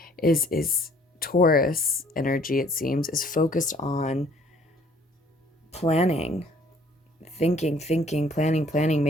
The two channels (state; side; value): normal; both; correlation 0.59